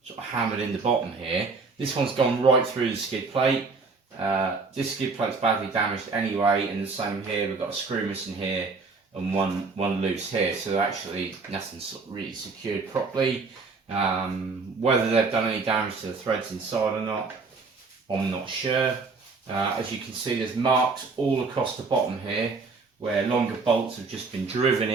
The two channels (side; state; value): left; quieter; 4.3 dB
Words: of hammered in the bottom here. This one's gone right through the skid plate. This skid plate's badly damaged anyway, and the same here. We've got a screw missing here and one loose here. So actually nothing's really secured properly. Whether they've done any damage to the threads inside or not, I'm not sure. As you can see, there's marks all across the bottom here where longer bolts have just been driven